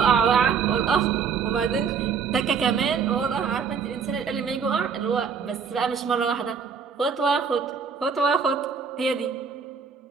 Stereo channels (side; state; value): left; quieter; 6.2 dB